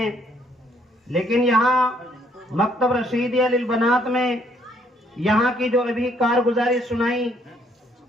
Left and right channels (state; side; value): normal; both; correlation 0.67